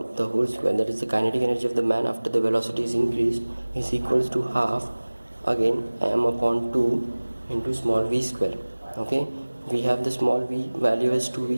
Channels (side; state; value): both; inverted; correlation -1.00